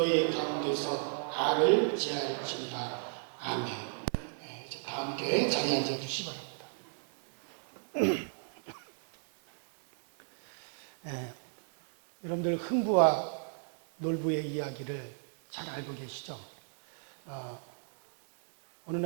가운데서 악을 제할지니라. 아멘. 이제 다 함께 자리에 앉아 주시기 바랍니다. 여러분들 흥부와 놀부의 이야기를 잘 알고 계시죠? 어느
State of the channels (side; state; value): left; silent; 55 dB below the other